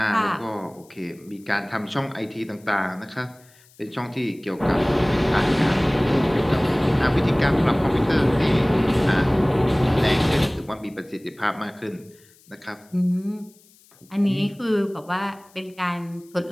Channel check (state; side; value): noise; left; hiss, 29 dB below the sound